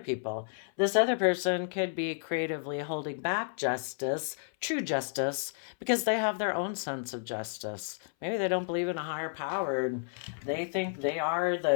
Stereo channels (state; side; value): silent; right; 57 dB below the other